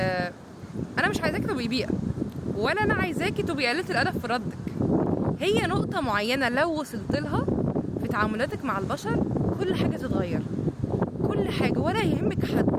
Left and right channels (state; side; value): identical; both; correlation 1.00